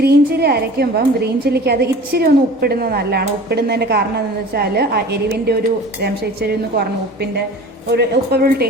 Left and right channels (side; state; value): both; normal; correlation 0.41